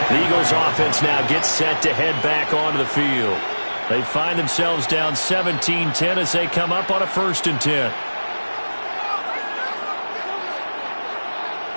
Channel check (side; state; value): both; inverted; correlation -1.00